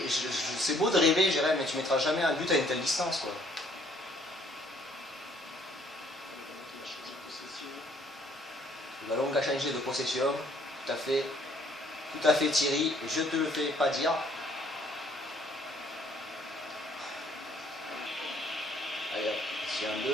c'est beau de rêver, Jérém, mais tu mettras jamais un but à une telle distance, quoi. Le ballon qui a changé de possession, tout à fait Thierry, je te le fais pas dire. Allez hop, ici un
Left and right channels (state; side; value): normal; both; correlation 0.62